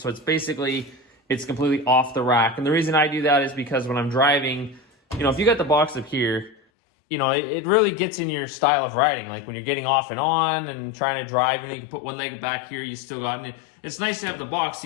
it's completely off the rack. And the reason I do that is because when I'm driving, if you got the box up here, it really gets in your style of riding. Like when you're getting off and on and trying to drive, and you can put one leg back here, you still got it. It's nice to have the box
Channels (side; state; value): right; drops out; at 6.6 s